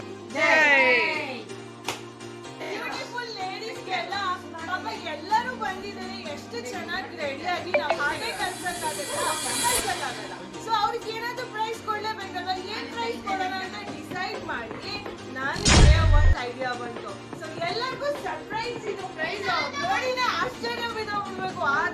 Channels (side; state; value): both; identical; correlation 1.00